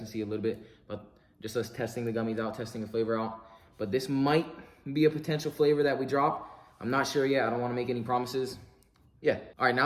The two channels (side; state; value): both; identical; correlation 1.00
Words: see a little bit, but just us testing the gummies out, testing the flavor out. But this might be a potential flavor that we drop. I'm not sure yet. I don't wanna make any promises. Yeah. All right,